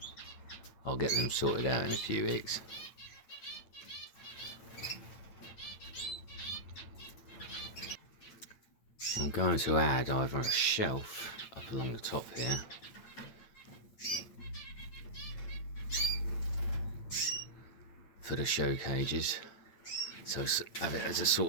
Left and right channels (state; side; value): late; right; 8.9 ms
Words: I'll get them sorted out in a few weeks. I'm going to add either a shelf up along the top here, for the show cages, so have it as a